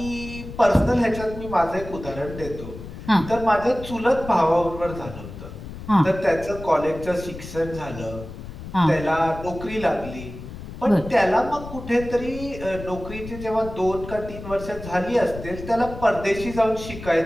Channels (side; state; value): left; noise; rumble, 12 dB below the sound